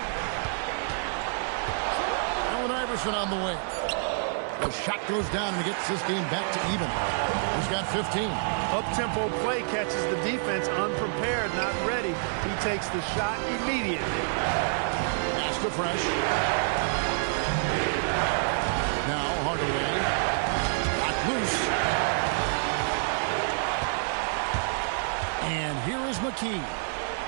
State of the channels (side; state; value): left; silent; 59 dB below the other